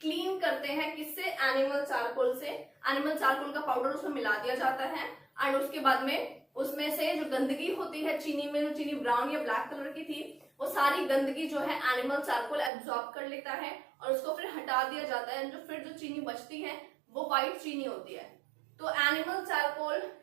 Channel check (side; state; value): left; drops out; at 12.7 s